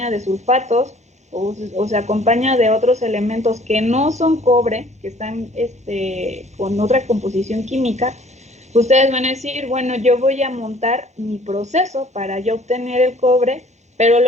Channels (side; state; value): both; normal; correlation 0.55